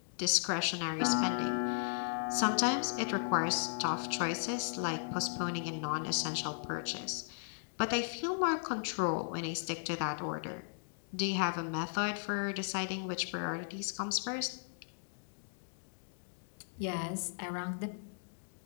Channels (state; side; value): silent; right; digital silence